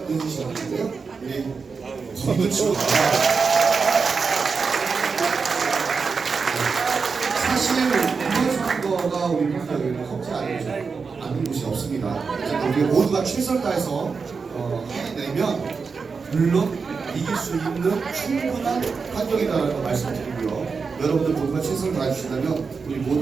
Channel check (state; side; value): quieter; left; 5.1 dB